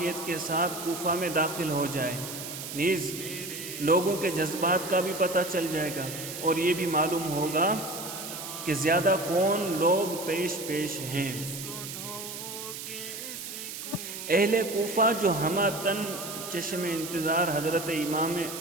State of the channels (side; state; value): right; noise; hiss, 8 dB below the sound